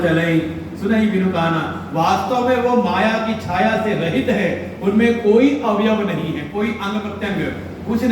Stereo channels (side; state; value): both; identical; correlation 1.00